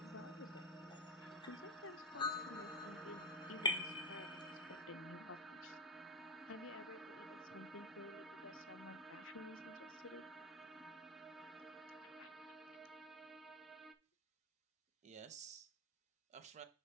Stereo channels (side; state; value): both; normal; correlation 0.05